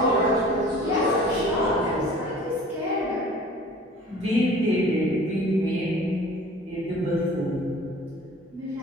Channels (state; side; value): normal; both; correlation 0.46